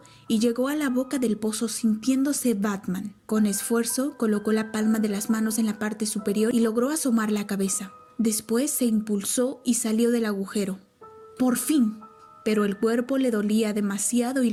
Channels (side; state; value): both; identical; correlation 1.00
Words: y llegó a la boca del pozo sintiéndose Batman. Con esfuerzo colocó la palma de las manos en la parte superior y logró asomar la cabeza. Después se impulsó y salió del agujero. ¡Por fin! Pero el cuerpo le dolía demasiado y